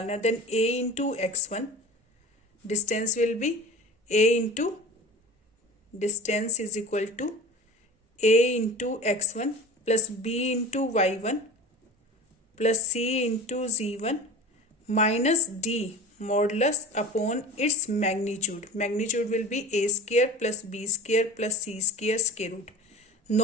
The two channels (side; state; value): both; normal; correlation 0.37